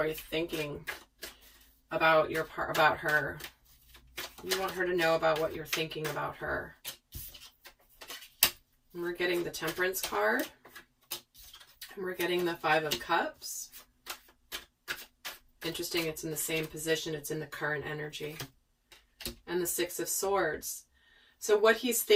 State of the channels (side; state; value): both; identical; correlation 1.00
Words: you're thinking about about her? You want her to know about what you're thinking about her. And we're getting the Temperance card. And we're getting the Five of Cups. Interesting, it's in the same position. It's in the current energy. And the Six of Swords. So what he's